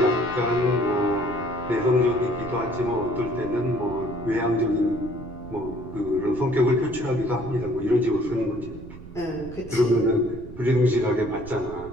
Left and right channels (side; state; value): right; noise; rumble, 15 dB below the sound